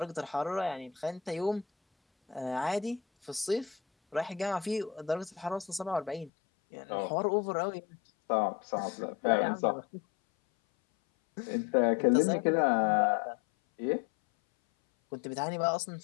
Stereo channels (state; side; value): drops out; right; at 6.3 s